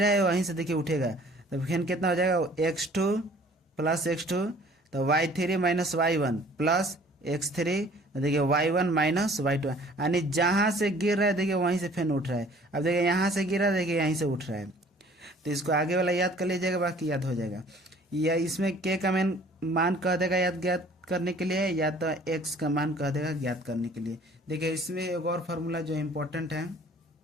है वहीं से देखिए उठेगा, तो फिर कितना हो जाएगा x2 प्लस x2, तो y3 minus y1 plus x3, देखिए y1 माइनस y2, यानी जहाँ से गिर रहा है देखिए वहीं से फिर उठ रहा है। अब देखिए यहाँ से गिरा, देखिए यहीं से उठ रहा है, तो इसको आगे वाला याद कर लीजिएगा, बाकी याद हो जाएगा। या इसमें k का मान कह देगा याद ज्ञात करने के लिए, या तो x का मान कह देगा ज्ञात करने के लिए। देखिए इसमें एक और फार्मूला जो इम्पोर्टेंट है,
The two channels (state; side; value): normal; both; correlation 0.53